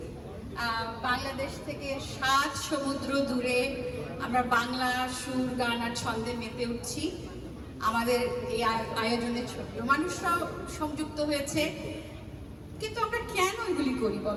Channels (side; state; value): both; identical; correlation 1.00